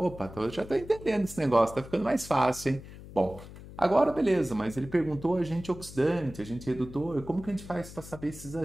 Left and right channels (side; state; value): left; noise; hum, 15 dB below the sound